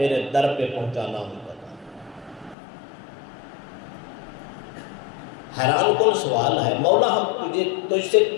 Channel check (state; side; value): drops out; right; at 2.6 s